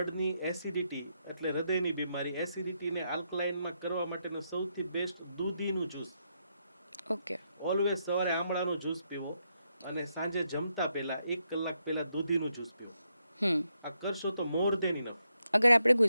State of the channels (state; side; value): inverted; both; correlation -0.81